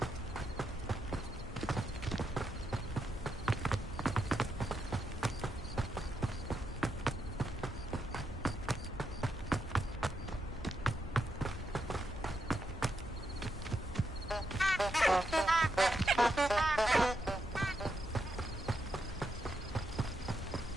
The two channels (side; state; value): both; normal; correlation 0.83